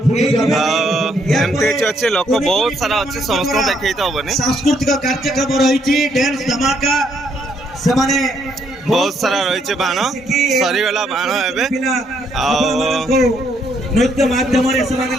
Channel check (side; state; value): both; normal; correlation 0.71